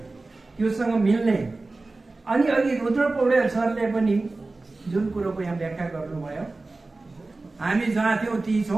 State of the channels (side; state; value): left; quieter; 3.3 dB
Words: त्योसँग मिल्ने अनि अघि रुद्र पौडेल सरले पनि जुन कुरोको यहाँ व्याख्या गर्नुभयो, हामी जहाँ थियौँ ती